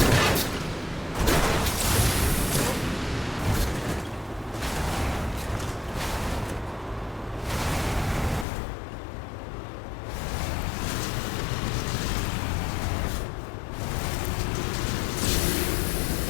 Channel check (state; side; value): drops out; right; at 8.5 s